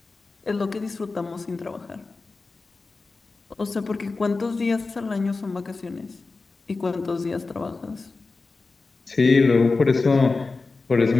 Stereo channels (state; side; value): quieter; right; 3.9 dB